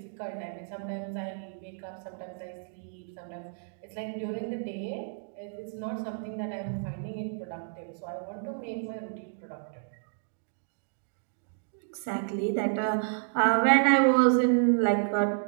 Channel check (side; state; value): left; silent; digital silence